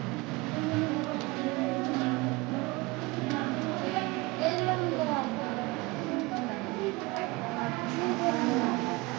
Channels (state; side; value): quieter; left; 23.4 dB